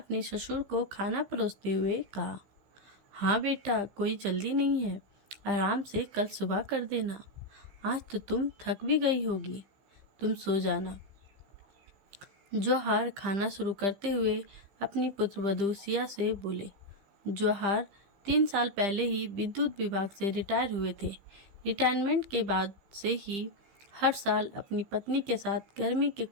ससुर को खाना परोसते हुए कहा। हाँ बेटा, कोई जल्दी नहीं है, आराम से कल सुबह कर देना। आज तो तुम थक भी गई होगी, तुम सो जाना। जौहर खाना शुरू करते हुए अपनी पुत्रवधू सिया से बोले। जौहर 3 साल पहले ही विद्युत विभाग से रिटायर हुए थे। रिटायरमेंट के बाद से ही हर साल अपनी पत्नी के साथ गर्मी के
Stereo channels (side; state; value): left; late; 15 ms